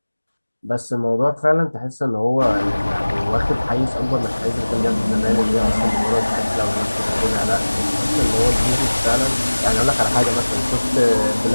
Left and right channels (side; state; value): both; inverted; correlation -1.00